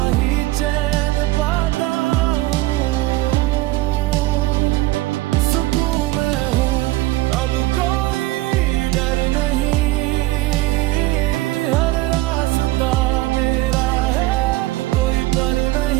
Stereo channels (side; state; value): left; quieter; 18.2 dB